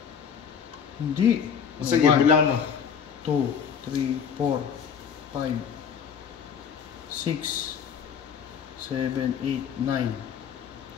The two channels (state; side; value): quieter; right; 7.2 dB